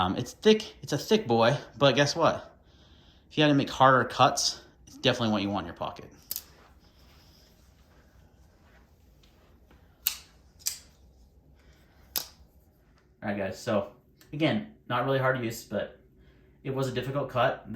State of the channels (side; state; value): both; identical; correlation 1.00